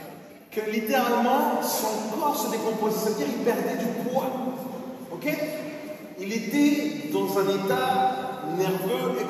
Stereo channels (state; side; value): identical; both; correlation 1.00